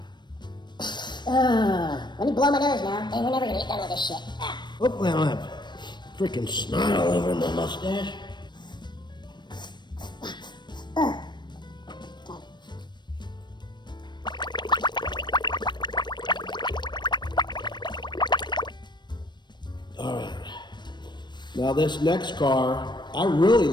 Let me blow my nose now. Hey, we're never gonna get done with this shit. Hopefully I don't have freaking snot all over my mustache. All right. Now this next car, I really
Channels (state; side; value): late; right; 0.22 ms